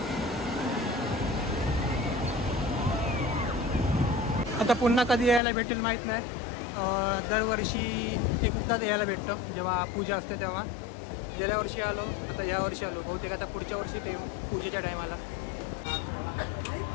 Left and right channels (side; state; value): right; drops out; at 5.4 s